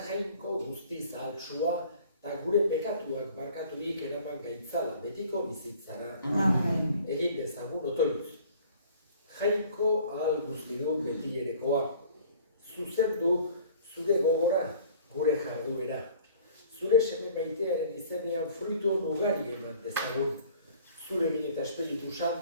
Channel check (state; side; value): inverted; both; correlation -0.51